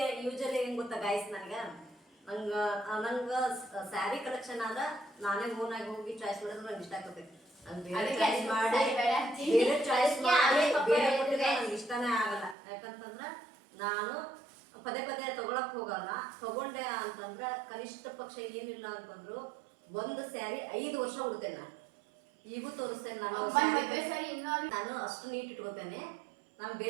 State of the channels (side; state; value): left; drops out; at 12.6 s